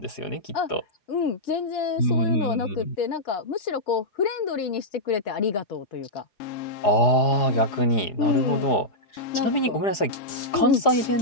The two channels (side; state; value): right; late; 4.9 ms